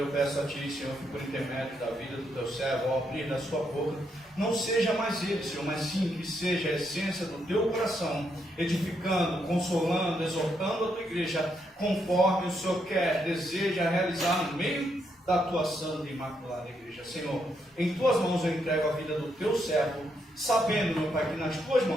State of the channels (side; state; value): both; normal; correlation 0.78